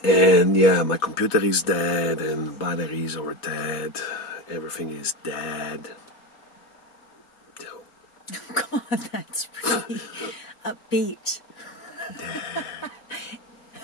And yeah, my computer is dead and batteries are dead. Everything is dead. So. Oh God, that's pretty upbeat.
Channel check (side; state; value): right; late; 4.1 ms